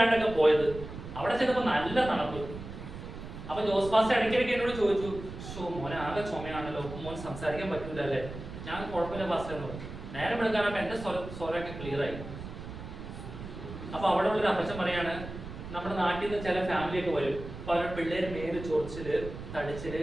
പോയത്. അവിടെ ചെന്നപ്പോ നല്ല തണുപ്പ്. അപ്പൊ ജോസ് പാസ്റ്റർ ഇടയ്ക്കിടയ്ക്ക് എന്നോട് ചോദിച്ചു, മോനെ ആകെ ചുമയാണല്ലോ, മോൻ സംസാരിക്കാൻ പറ്റൂല അല്ലേ? ഞാൻ കുഴപ്പമില്ല പാസ്റ്റർ എന്ന് പറഞ്ഞു. നേരം എടുക്കാനപ്പോ എന്റെ സ്വരമൊക്കെ ക്ലിയർ ആയി. അപ്പൊ അവിടെ ഉള്ളൊരു അപ്പച്ചൻ പറയാണ്, നമ്മുടെ നാട്ടിൽ നിന്ന് ചില ഫാമിലിയൊക്കെ വരും. അപ്പൊ അവരുടെ പിള്ളേര് മേല് ചൊറിച്ചില്, തടിച്ചില്,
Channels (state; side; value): noise; right; rumble, 10 dB below the sound